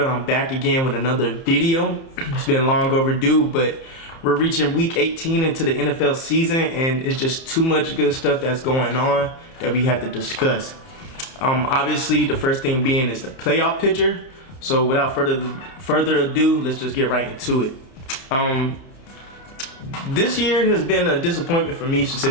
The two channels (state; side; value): late; right; 30 ms